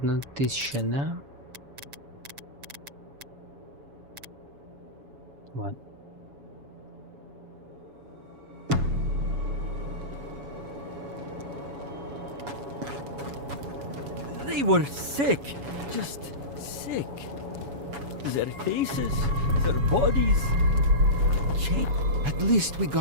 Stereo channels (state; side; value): late; left; 7.1 ms